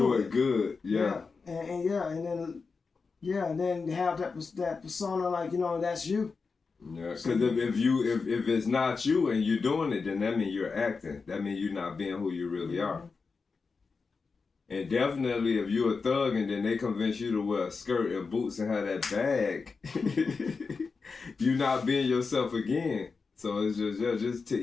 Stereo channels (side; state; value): right; quieter; 4.7 dB